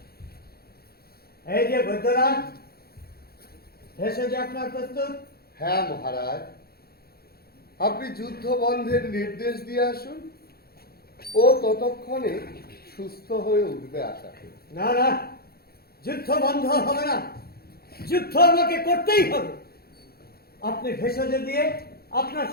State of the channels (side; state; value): right; late; 0.45 ms